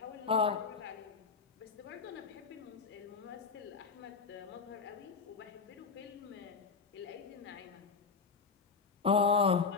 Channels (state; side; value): quieter; right; 5.2 dB